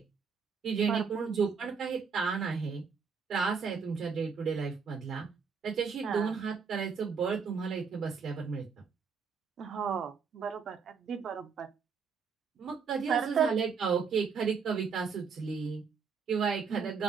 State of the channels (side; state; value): left; quieter; 5.8 dB